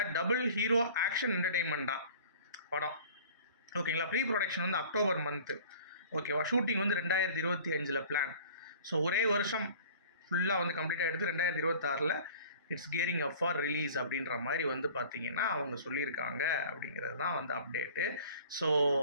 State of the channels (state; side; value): inverted; both; correlation -0.46